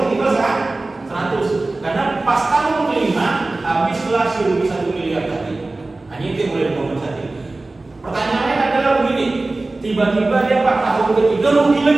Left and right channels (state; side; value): quieter; left; 3.1 dB